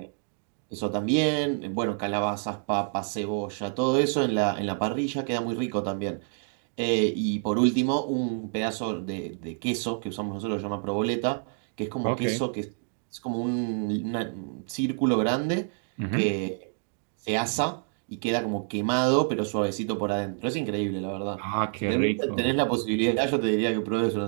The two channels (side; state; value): left; silent; 56 dB below the other